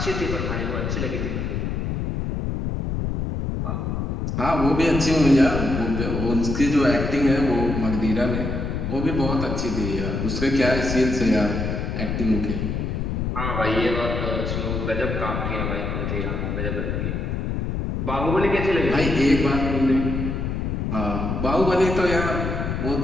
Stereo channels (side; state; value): left; noise; rumble, 2 dB below the sound